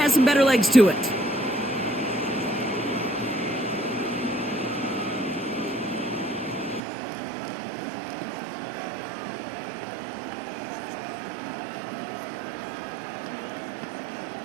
some better legs to it.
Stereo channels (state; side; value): drops out; left; at 6.8 s